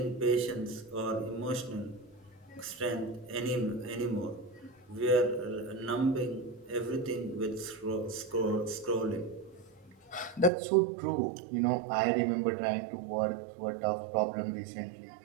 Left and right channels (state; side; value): drops out; left; at 10.5 s